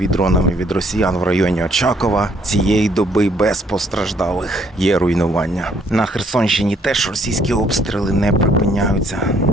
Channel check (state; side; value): normal; both; correlation 0.66